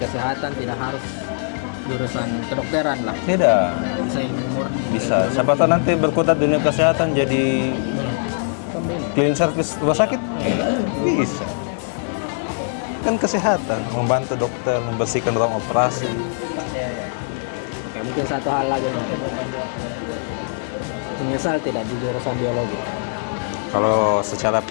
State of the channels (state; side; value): silent; right; digital silence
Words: tidak harus jurusan kedokteran lah. Tidak. Bisa ilmu murni Bisa. kayak Siapa tahu nanti berkutat dunia kesehatan jadi clean service rumah sakit. Bisa. Kan kesehatan, membantu dokter membersihkan ruang operasi. Oke, mungkin satu hal lagi nih. Menyesal tidak di jurusan biologi? Kalau secara